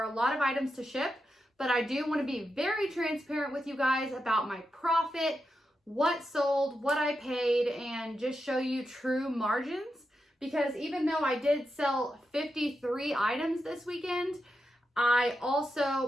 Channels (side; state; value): both; normal; correlation 0.87